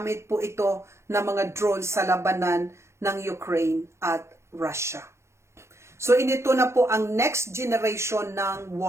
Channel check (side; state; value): left; late; 0.13 ms